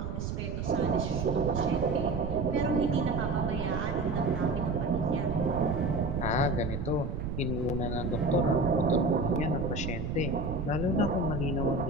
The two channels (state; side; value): noise; right; rumble, 4 dB below the sound